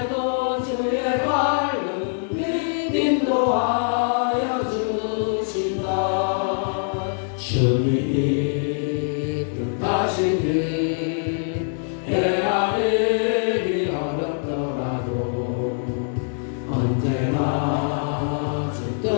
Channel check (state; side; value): silent; right; digital silence